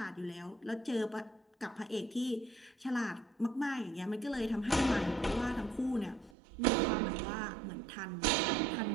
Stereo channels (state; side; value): drops out; left; at 6.4 s